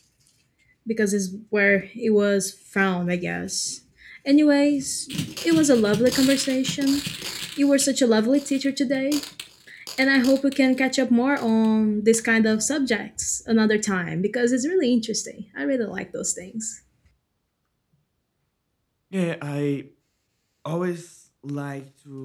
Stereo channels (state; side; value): identical; both; correlation 1.00